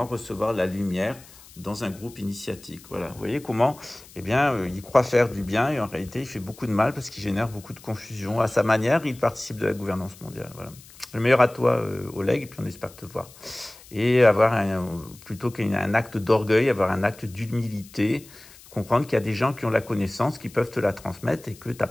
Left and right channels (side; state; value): left; noise; hiss, 22 dB below the sound